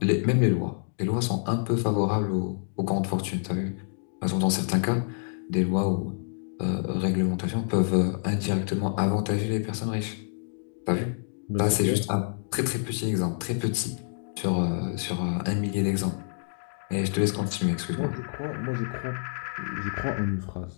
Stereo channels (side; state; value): right; silent; digital silence